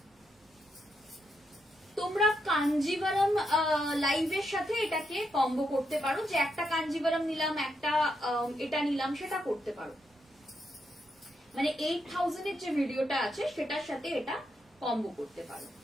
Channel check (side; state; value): both; normal; correlation 0.81